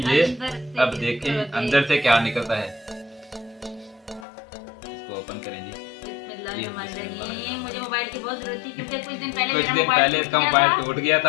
ये। अब देखें अंदर से क्या निकलता है, इसको ओपन करें जी। मुझे मोबाइल की बहुत जरूरत थी क्योंकि कुछ दिन पहले इसका मोबाइल टूट गया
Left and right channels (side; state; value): right; drops out; at 4.2 s